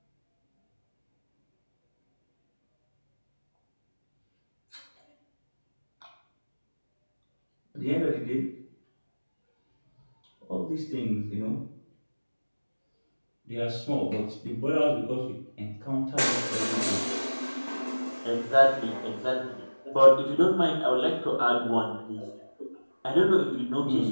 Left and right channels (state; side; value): inverted; both; correlation -1.00